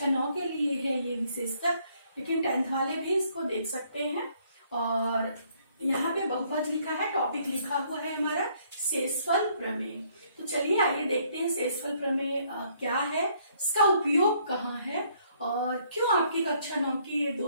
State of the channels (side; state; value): both; inverted; correlation -0.66